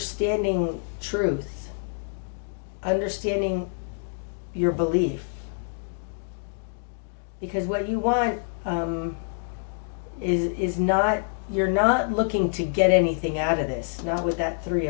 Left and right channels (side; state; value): right; silent; digital silence